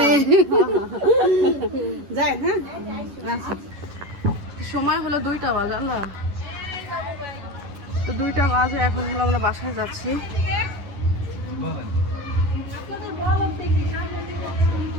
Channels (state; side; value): late; left; 11 ms